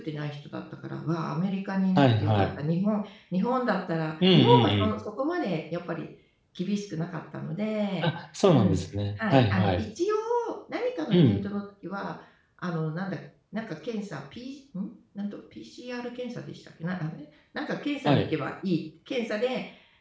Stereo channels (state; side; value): identical; both; correlation 1.00